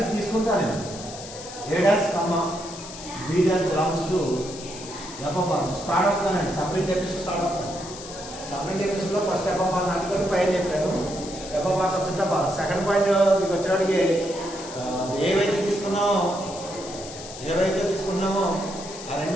తీసుకుంటాను నేను A dash comma B dash belongs to FR start అవుతానండి. సపరేట్ ఎపిసోడ్ స్టార్ట్ అవుతాను. సపరేట్ ఎపిసోడ్లో ఫస్ట్ ఎఫ్ఆర్ నాటుకొని పైన చెప్పాను FR subject FR. Second point మీకు వచ్చేవాడికి ఏవైతే తీసుకున్నామో ఆ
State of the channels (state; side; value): noise; left; hiss, 13 dB below the sound